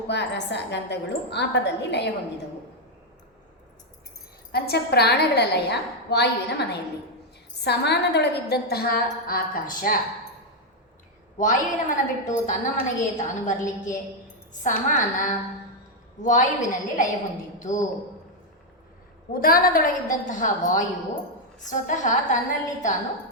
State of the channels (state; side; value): normal; both; correlation 0.01